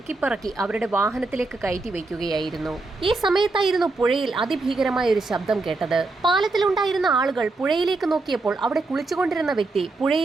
അവരുടെ വാഹനത്തിലേക്ക് കയറ്റി വയ്ക്കുകയായിരുന്നു. ഈ സമയത്തായിരുന്നു പുഴയിൽ അതിഭീകരമായ ഒരു ശബ്ദം കേട്ടത്. പാലത്തിലുണ്ടായിരുന്ന ആളുകൾ പുഴയിലേക്ക് നോക്കിയപ്പോൾ അവിടെ കുളിച്ചുകൊണ്ടിരുന്ന വ്യക്തി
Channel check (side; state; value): left; quieter; 3.4 dB